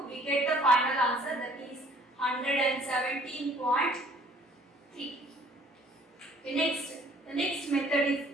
we get the final answer, that is 117.3. The next method is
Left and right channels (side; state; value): both; normal; correlation 0.57